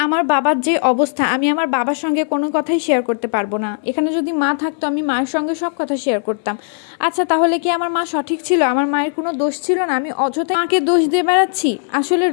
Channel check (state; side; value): silent; right; digital silence